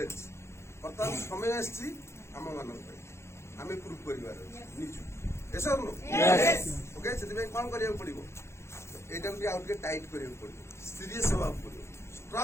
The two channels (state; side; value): late; right; 0.13 ms